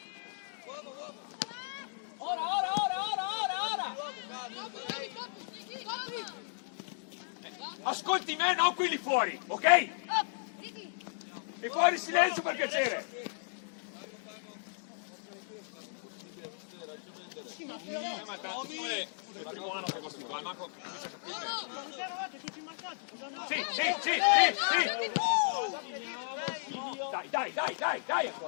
Ora! Ascolti me, non quelli fuori, ok? E fuori silenzio per piacere! Sì!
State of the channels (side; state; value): right; silent; digital silence